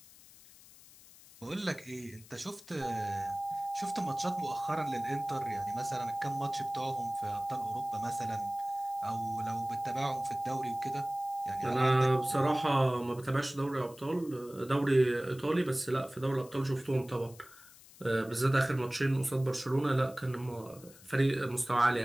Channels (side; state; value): left; noise; hiss, 22 dB below the sound